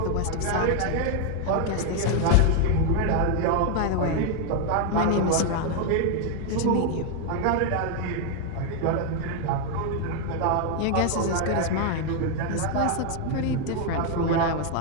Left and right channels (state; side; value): different; both; correlation 0.01